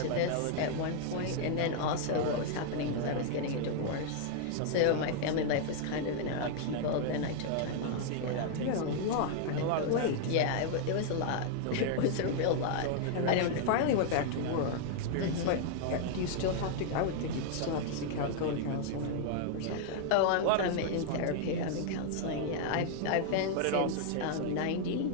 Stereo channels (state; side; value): different; both; correlation 0.00